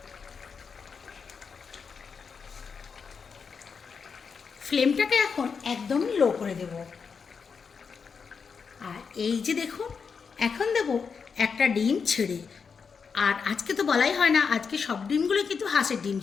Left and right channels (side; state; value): right; quieter; 5.8 dB